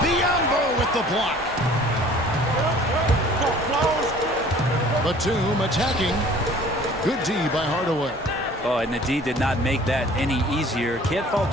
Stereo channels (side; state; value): both; normal; correlation 0.50